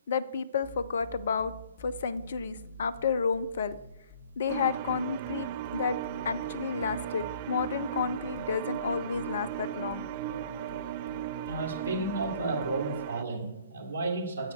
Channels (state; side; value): inverted; both; correlation -0.56